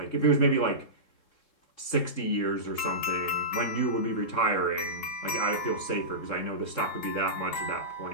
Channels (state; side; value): late; right; 3.7 ms